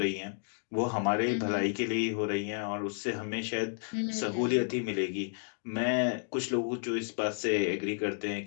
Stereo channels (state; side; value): silent; right; 57 dB below the other